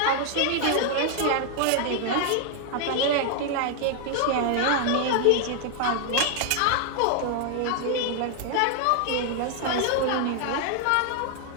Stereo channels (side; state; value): both; different; correlation 0.00